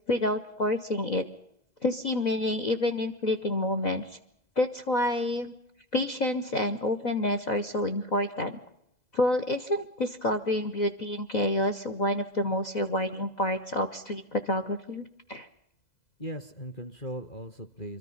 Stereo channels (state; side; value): late; right; 2.0 ms